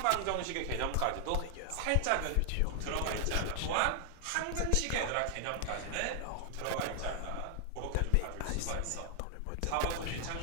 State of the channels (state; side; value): different; both; correlation 0.00